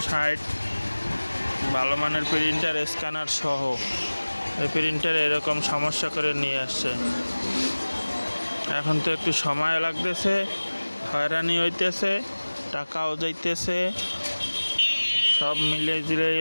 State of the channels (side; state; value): both; inverted; correlation -1.00